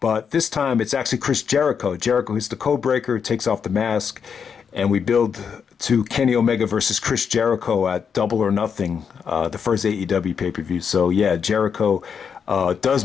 this time it's actually Chris Jericho. Jericho hits the code breaker, takes off the mask, and we build to Kenny Omega versus Chris Jericho at Double or Nothing, the first AEW pay-per-view. So yeah, Jericho does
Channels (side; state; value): right; quieter; 6.8 dB